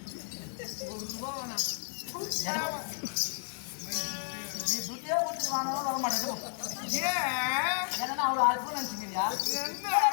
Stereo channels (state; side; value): silent; right; digital silence